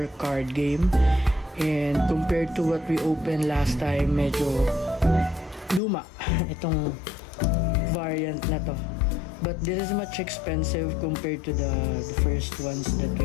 card game. And compared to what we opened last time, medyo luma itong variant na to. But this is much expensive compared to the first ones that we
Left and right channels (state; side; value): drops out; right; at 5.8 s